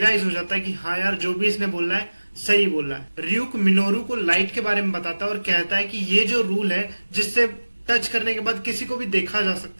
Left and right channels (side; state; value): both; inverted; correlation -1.00